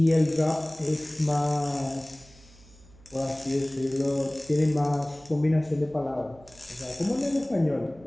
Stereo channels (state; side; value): noise; right; hum, 25 dB below the sound